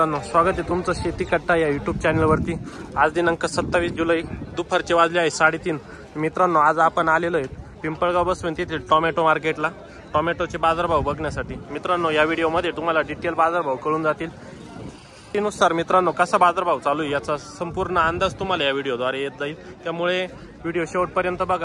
स्वागत आहे तुमचं शेती कट्टा या यूट्यूब चॅनलवरती। आज दिनांक 27 जुलै दुपारचे वाजले आहे 3:30। मित्रांनो, आज आपण आलेलो आहे पिंपळगाव बसवंत येथील टोमॅटो मार्केटला टोमॅटोचे बाजारभाव बघण्यासाठी। मित्रांनो, या व्हिडिओमध्ये तुम्हाला डिटेल बाजारभाव कळून जातील। त्यानुसार मित्रांनो कसा बाजारभाव चालू आहे याचा संपूर्ण अंदाज तुम्हाला या व्हिडिओद्वारे येत जाईल। त्यामुळे व्हिडिओ शेवटपर्यंत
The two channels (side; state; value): both; identical; correlation 1.00